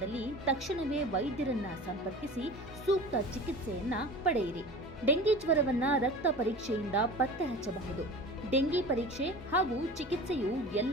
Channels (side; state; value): both; normal; correlation 0.37